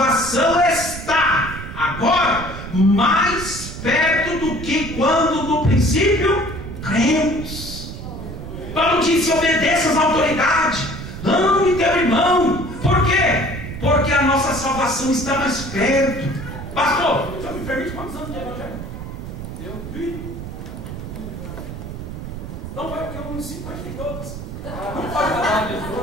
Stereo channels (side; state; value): right; noise; rumble, 9 dB below the sound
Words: está agora mais perto do que quando no princípio cremos. Paulo disse: obedeça às autoridades, ame teu irmão. Por quê? Porque a nossa salvação está mais perto. Pastor, o senhor me permite quantos anos de evangelho? Eu vi. Então vai, porque eu não ensino mais que todos. Não pode falar.